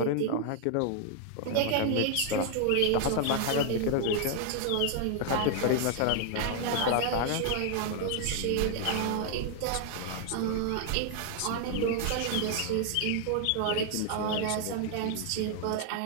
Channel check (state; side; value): different; both; correlation 0.00